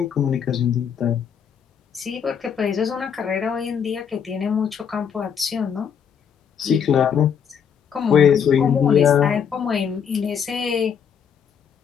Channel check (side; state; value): right; quieter; 7.5 dB